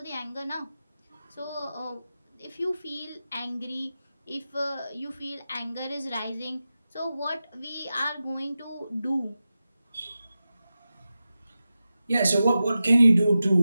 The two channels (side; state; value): both; inverted; correlation -0.93